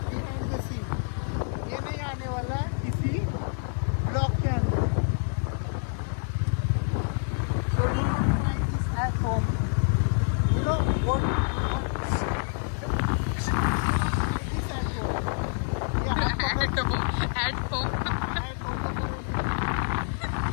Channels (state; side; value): silent; right; 55 dB below the other